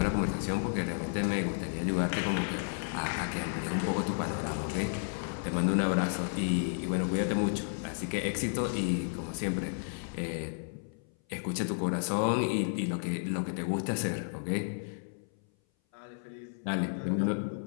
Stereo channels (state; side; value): silent; right; 56 dB below the other